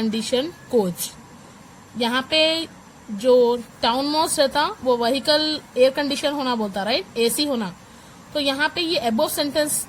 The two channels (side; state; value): both; identical; correlation 1.00